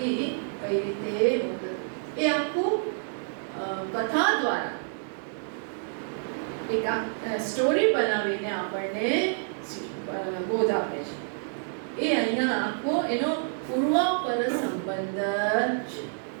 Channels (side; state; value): left; silent; digital silence